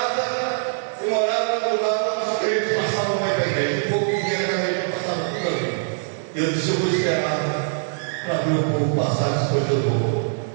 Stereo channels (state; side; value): silent; left; digital silence